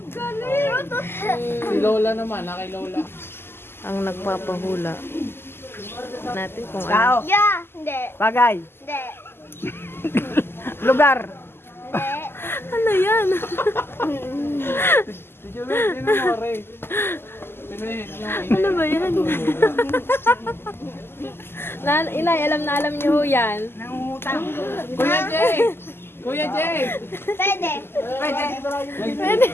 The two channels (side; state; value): right; late; 0.11 ms